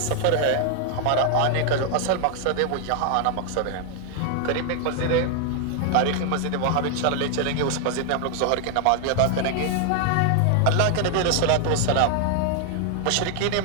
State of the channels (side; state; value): both; different; correlation 0.00